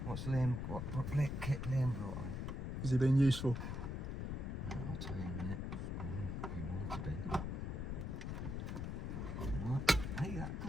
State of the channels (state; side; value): noise; left; rumble, 3 dB below the sound